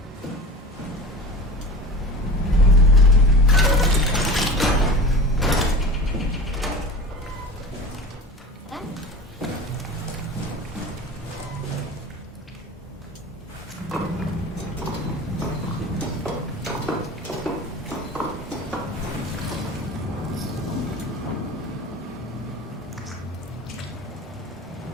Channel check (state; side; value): normal; both; correlation 0.35